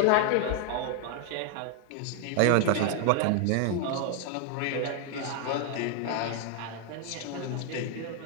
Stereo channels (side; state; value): both; different; correlation 0.00